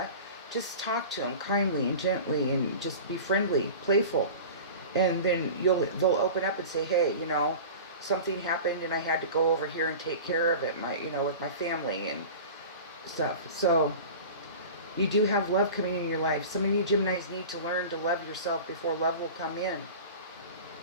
Just talk to them kindly and gently, and just be friendly, playful. And then they'll open up and say, hey, you know, something happened and I had to go over here and take care of it, with my family and stuff. So you do have love coming in your life. Some of you Geminis need to learn to love yourself before love will come in.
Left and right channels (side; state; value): both; inverted; correlation -0.36